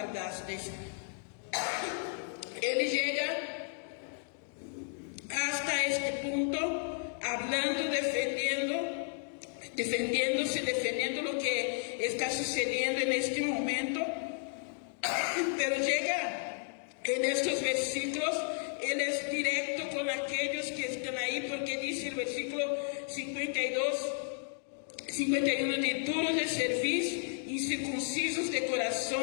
Él llega hasta este punto, hablando, defendiendo lo que está sucediendo en este momento. Pero llega en estos versículos, él es directo con aquellos que están ahí, porque dice el versículo 51, de duros de cerviz, incircuncisos de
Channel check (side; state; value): right; silent; 56 dB below the other